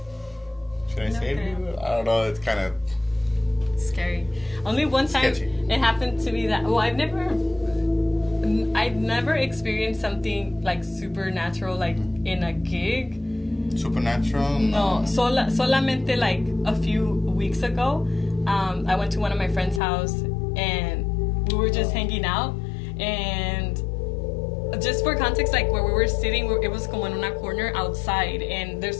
should I save you? I don't know. It's kind of scary. Only one time it happened to me that I've never experienced something like supernatural like in a gig. Supernatural? No, solamente like a few weeks ago, I went to one of my friend's house and we were just hanging out, and just for context, like where we were sitting, it was como en una corner outside, and there's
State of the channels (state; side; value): drops out; right; at 19.8 s